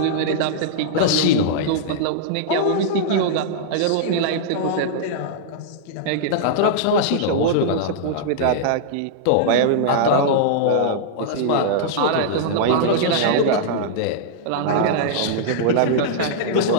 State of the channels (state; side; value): different; both; correlation -0.02